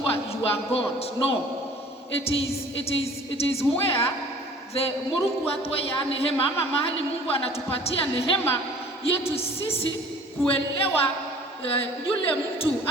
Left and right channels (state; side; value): normal; both; correlation 0.49